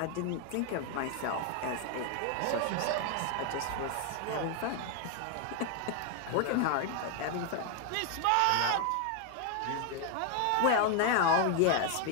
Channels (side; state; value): both; different; correlation 0.00